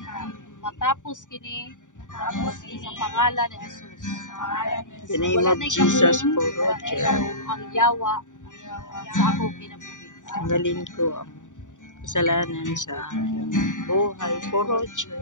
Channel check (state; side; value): late; right; 0.86 ms